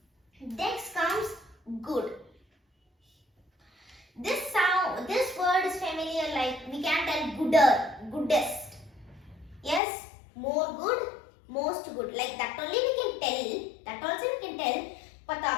Next comes good. This word is familiar, like we can tell gooder, goodest. Yes, more good, most good. Like that only we can tell. That also we can tell. But the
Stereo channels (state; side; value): drops out; right; at 9.8 s